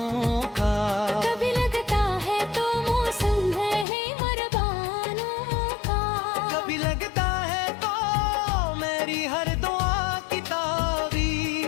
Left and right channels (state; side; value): drops out; right; at 3.9 s